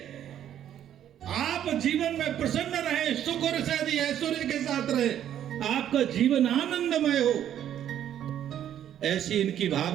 आप जीवन में प्रसन्न रहे, सुख और शादी ऐश्वर्य के साथ रहे, आपका जीवन आनंदमय हो। ऐसी इनकी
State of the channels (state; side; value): quieter; left; 10.6 dB